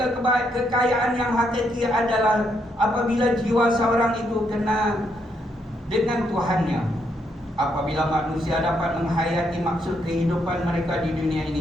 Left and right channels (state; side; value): normal; both; correlation 0.76